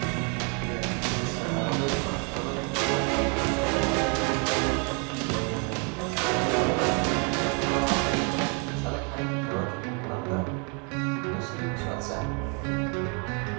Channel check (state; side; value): quieter; left; 36.1 dB